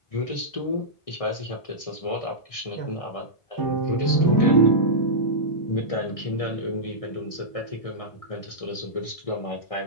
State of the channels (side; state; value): right; late; 1.6 ms